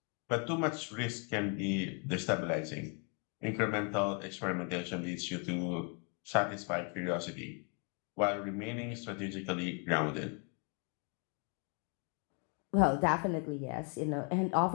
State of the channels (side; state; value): right; quieter; 37.1 dB